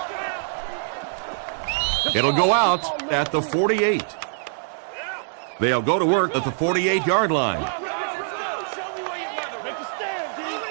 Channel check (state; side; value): silent; left; 63 dB below the other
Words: It'll go out at the 48. They'll go to work at the 48-yard line.